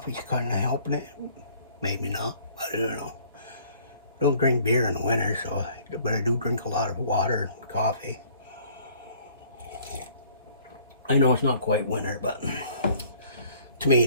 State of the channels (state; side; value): inverted; both; correlation -0.56